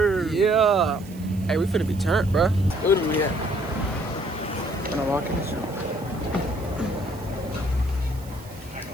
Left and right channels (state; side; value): noise; right; hiss, 22 dB below the sound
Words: time? Yeah. Hey, we finna be turned, bro. What do we at? When I walk in the show.